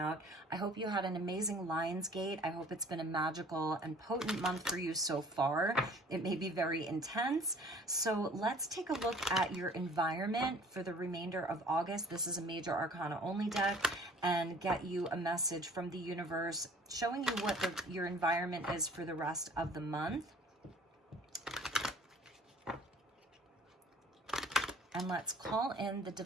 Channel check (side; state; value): both; normal; correlation 0.51